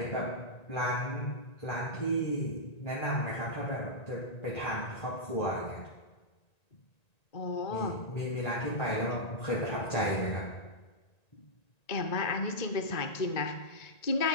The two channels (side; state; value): right; late; 1.9 ms